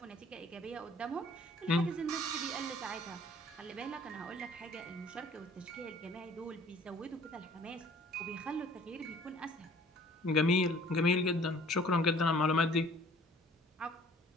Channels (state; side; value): normal; both; correlation 0.53